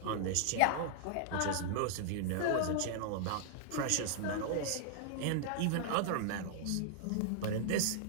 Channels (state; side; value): different; both; correlation -0.01